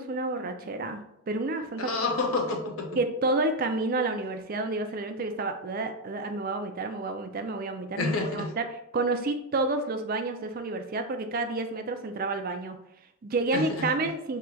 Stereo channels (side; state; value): both; normal; correlation 0.06